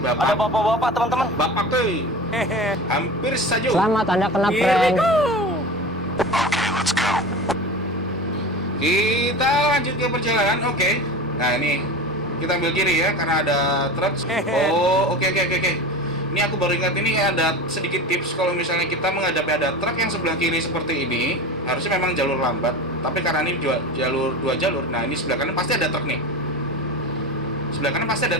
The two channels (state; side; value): normal; both; correlation 0.30